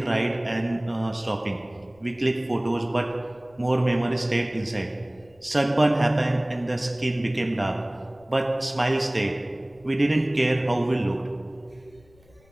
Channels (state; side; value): noise; left; rumble, 29 dB below the sound